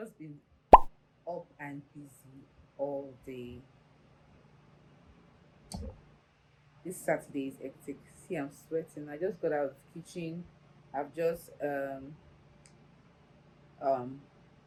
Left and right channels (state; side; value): identical; both; correlation 1.00